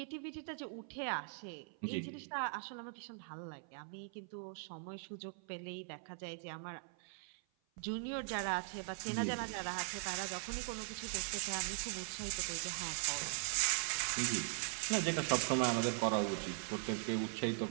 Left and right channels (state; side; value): silent; left; 51 dB below the other